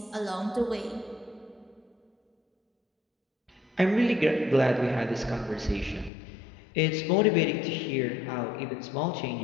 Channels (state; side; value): drops out; right; at 6.1 s